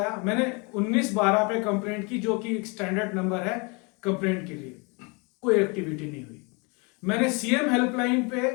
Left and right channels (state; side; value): quieter; right; 30.7 dB